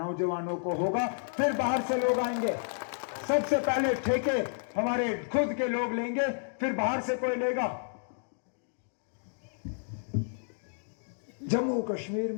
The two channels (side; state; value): right; silent; digital silence